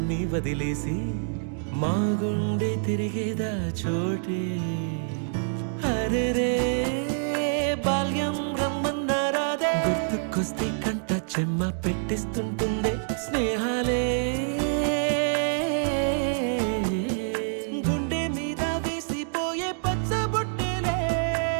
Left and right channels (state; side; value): silent; left; digital silence